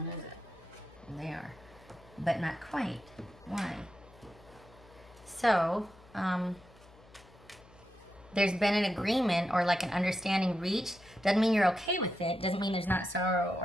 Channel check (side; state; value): left; noise; hum, 24 dB below the sound